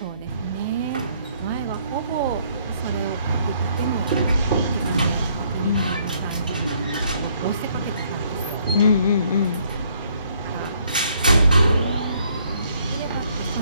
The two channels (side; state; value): both; inverted; correlation -0.66